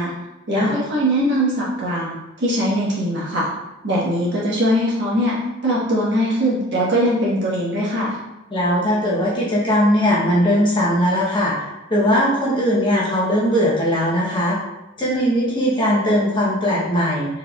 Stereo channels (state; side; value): normal; both; correlation 0.46